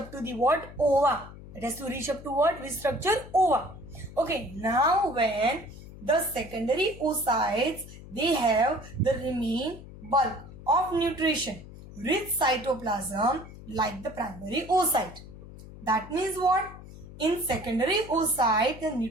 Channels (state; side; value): noise; left; hum, 16 dB below the sound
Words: to the what? Ova. It has to reach up to what? Which structure? Ova. Okay, now when the secondary oocytes, they have the remain bulk of nutrition, rich cytoplasm like the primary oocyte. That means what? In secondary oocyte, the